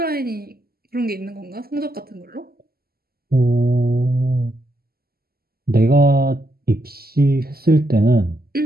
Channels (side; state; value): left; late; 0.45 ms